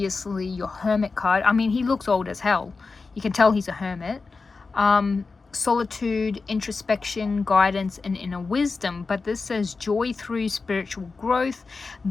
your Hermit card. I mean, he looks old as hell. You can tell he's a hermit. Solitude, introspection, guidance, and inner wisdom. But this says joy through spiritual growth,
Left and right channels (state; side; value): quieter; right; 4.2 dB